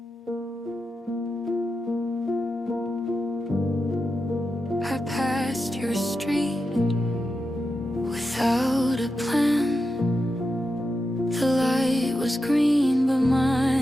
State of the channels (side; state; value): both; normal; correlation 0.89